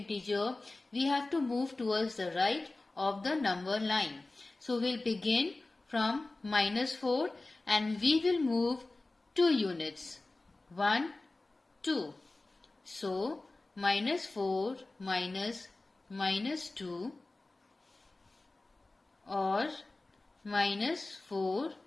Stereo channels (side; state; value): right; quieter; 3.1 dB